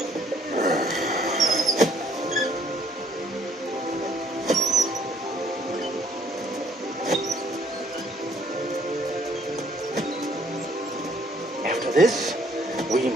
After this, we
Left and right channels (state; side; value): normal; both; correlation 0.63